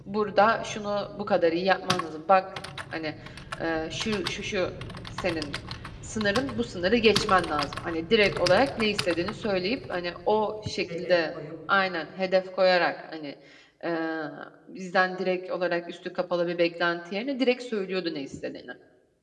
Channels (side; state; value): both; identical; correlation 1.00